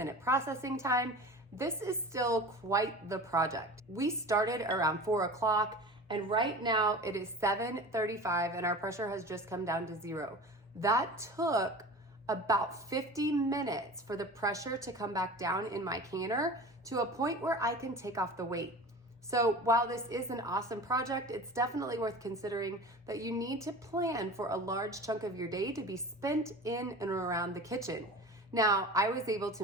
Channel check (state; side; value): normal; both; correlation 0.36